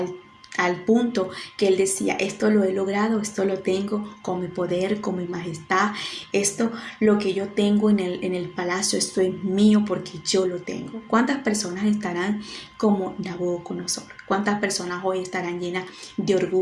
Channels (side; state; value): both; identical; correlation 1.00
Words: al punto que él decía: esto lo he logrado, esto lo tengo con mi poder, con mi majestad, esto lo que yo tengo en el palacio, esto es mío porque yo lo tengo. ¿Cuántas personas estarán como Nabucodonosor? ¿Cuántas personas hoy estarán llenas de